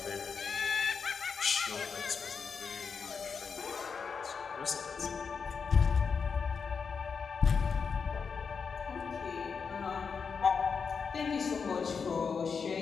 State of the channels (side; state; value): right; quieter; 5.8 dB